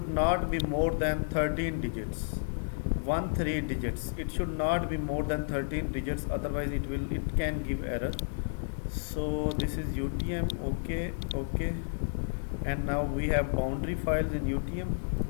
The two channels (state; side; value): silent; right; digital silence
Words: not be more than 13 digits, 13 digits. It should not be more than 13 digits, otherwise it can give error. So this is UTM. Okay, okay, and now we have boundary files in UTM.